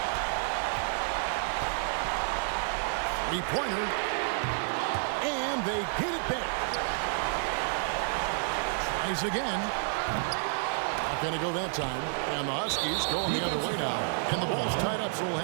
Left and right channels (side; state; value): left; silent; 58 dB below the other